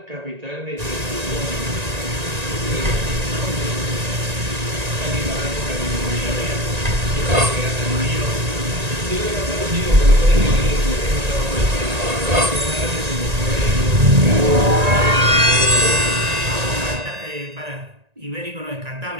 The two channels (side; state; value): left; late; 1.9 ms